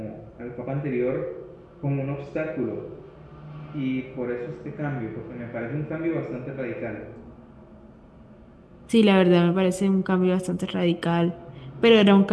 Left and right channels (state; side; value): identical; both; correlation 1.00